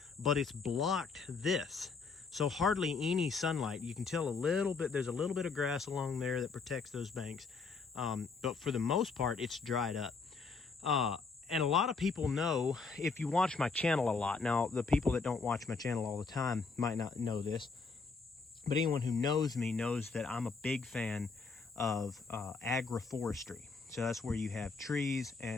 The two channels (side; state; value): right; quieter; 4.6 dB